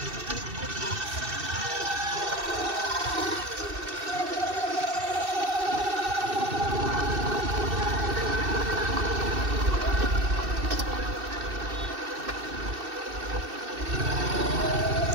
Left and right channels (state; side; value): late; left; 2.6 ms